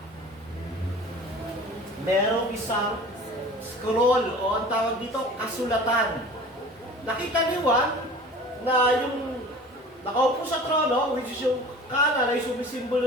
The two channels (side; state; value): both; normal; correlation 0.41